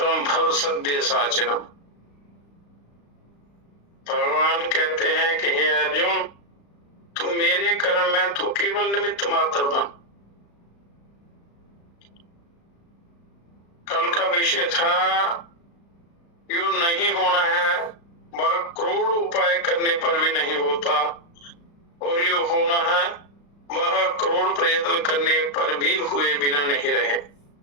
भव सद्य साचिनम। भगवान कहते हैं कि हे अर्जुन, तू मेरे कर्म में तू केवल निमित्त मात्र बन। कल का विषय था यो नहीं होना है, वह करोड़ उपाय करने पर भी नहीं होता, और यो होना है वह करोड़ प्रयत्न करने पर भी हुए बिना नहीं रहे।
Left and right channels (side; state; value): right; late; 35 ms